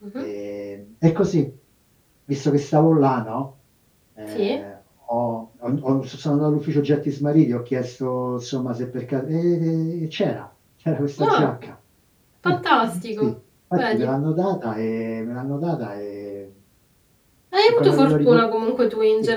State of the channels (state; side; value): identical; both; correlation 1.00